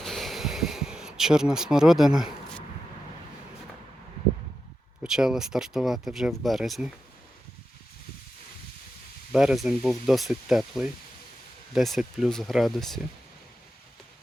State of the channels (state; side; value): normal; both; correlation 0.89